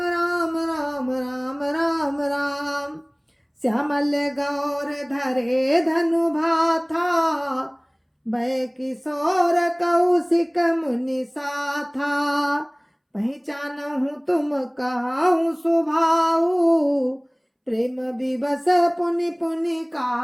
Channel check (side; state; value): both; identical; correlation 1.00